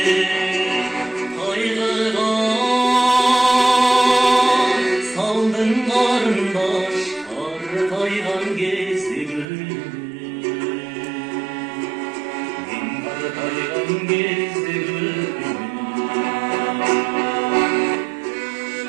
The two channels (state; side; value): drops out; left; at 9.5 s